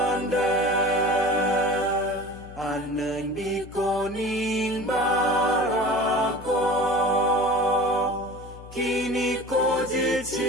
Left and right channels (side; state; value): left; noise; hum, 16 dB below the sound